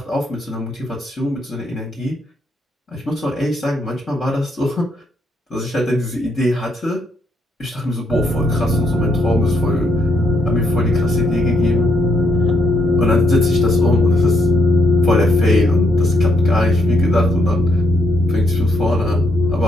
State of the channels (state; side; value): normal; both; correlation 0.75